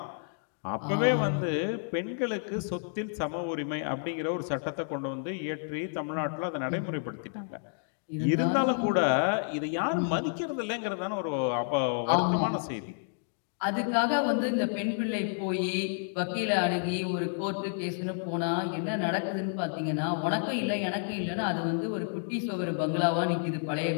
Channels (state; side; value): silent; right; digital silence